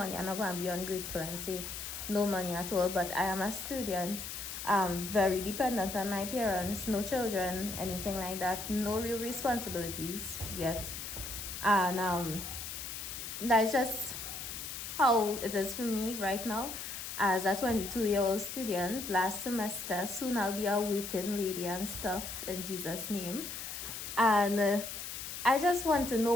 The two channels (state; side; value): noise; left; hiss, 7 dB below the sound